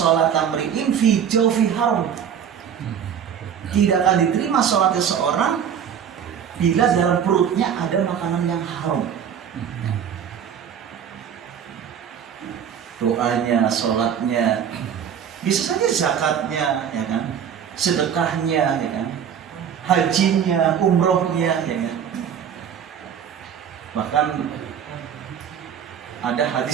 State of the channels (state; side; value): quieter; left; 8.3 dB